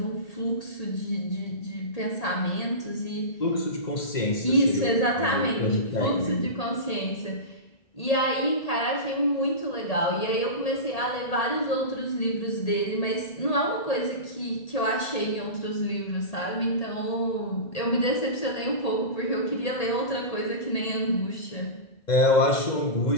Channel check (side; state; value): right; late; 1.8 ms